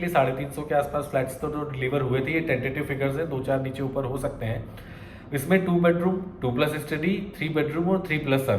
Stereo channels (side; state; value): both; identical; correlation 1.00